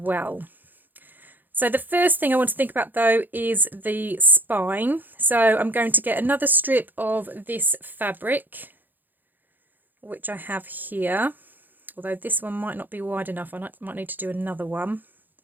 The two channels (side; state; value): left; late; 0.088 ms